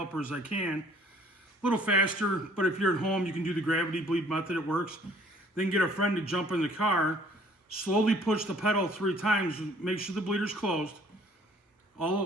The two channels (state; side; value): normal; both; correlation 0.57